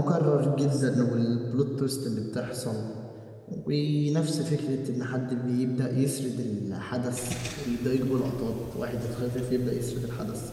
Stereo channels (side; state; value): both; identical; correlation 1.00